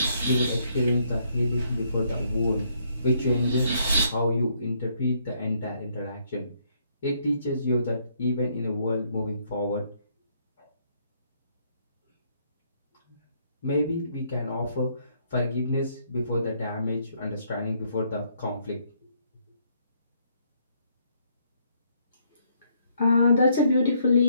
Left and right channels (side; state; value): both; inverted; correlation -0.70